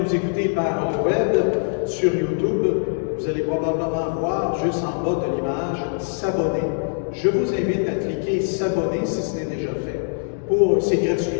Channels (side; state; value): right; silent; digital silence